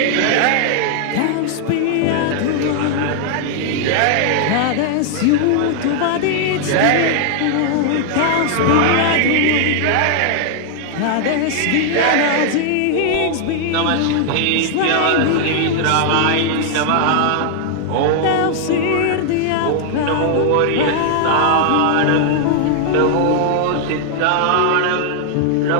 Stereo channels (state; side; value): different; both; correlation 0.00